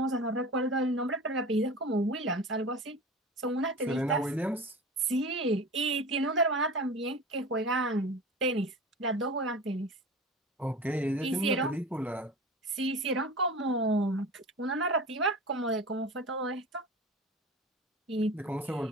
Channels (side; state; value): both; normal; correlation 0.33